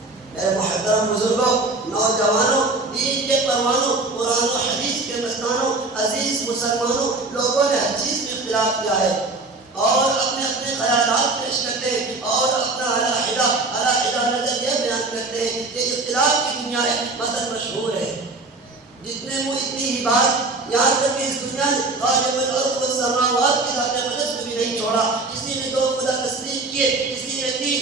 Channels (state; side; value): quieter; left; 3.3 dB